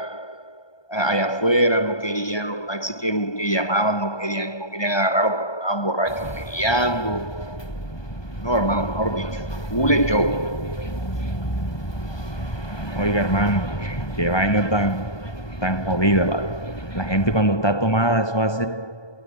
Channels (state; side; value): late; right; 1.2 ms